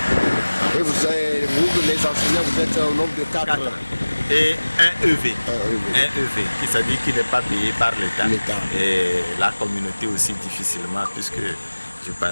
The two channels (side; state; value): both; inverted; correlation -1.00